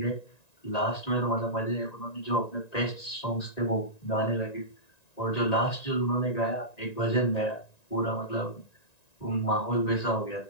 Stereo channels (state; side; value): late; right; 1.9 ms